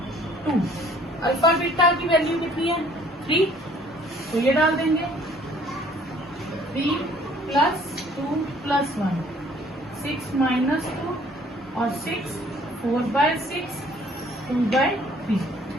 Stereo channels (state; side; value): normal; both; correlation 0.57